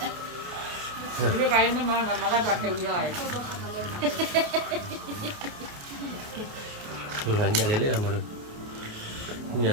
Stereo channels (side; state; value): left; late; 29 ms